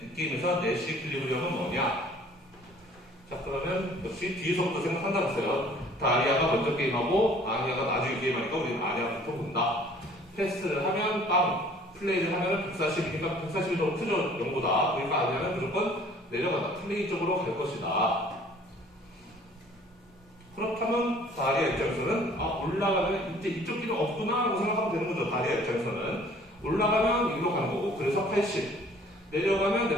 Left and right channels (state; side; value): normal; both; correlation 0.53